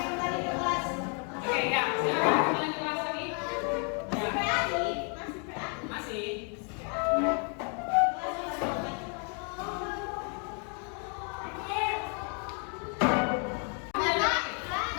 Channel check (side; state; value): right; quieter; 39.2 dB